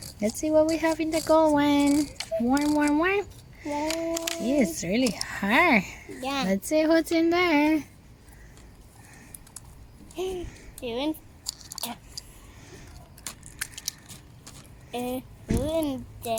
Let's see what we have in the gold one. Warm. It's really hard. Yeah. Let's see what's in there. Doing. Who in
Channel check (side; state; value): both; identical; correlation 1.00